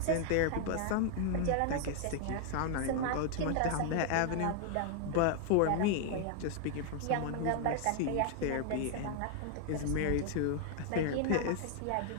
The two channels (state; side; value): different; both; correlation 0.00